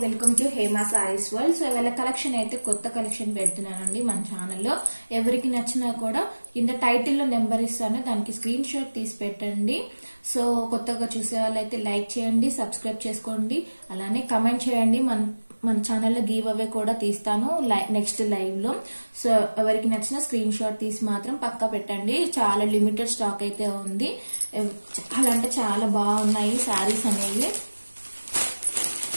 welcome to Hema saris world. So ఇవాళ కలెక్షన్ అయితే కొత్త కలెక్షన్ పెడుతున్నానండి మన ఛానల్లో. ఎవరికి నచ్చినా కూడా కింద టైటిల్లో నెంబర్ ఇస్తాను, దానికి స్క్రీన్ షాట్ తీసి పెట్టండి. సో కొత్తగా చూసే వాళ్ళైతే లైక్ చేయండి, సబ్స్క్రైబ్ చేసుకోండి, అలానే కమెంట్ చేయండి. మన ఛానల్లో గివ్ అవే కూడా తీస్తాను నెక్స్ట్ లైవ్ లో. సో ఎవరికి నచ్చిన స్క్రీన్ షాట్ తీసి మాత్రం పక్కా పెట్టండి. చాలా లిమిటెడ్ స్టాక్ అయితే ఉంది. చాలా అంటే చాలా బాగున్నాయి శారీస్ అనేవి.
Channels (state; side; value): inverted; both; correlation -1.00